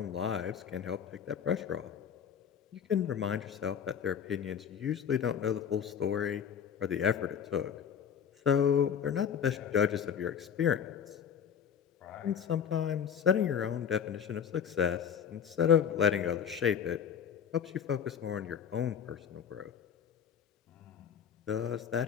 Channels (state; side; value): quieter; right; 7.9 dB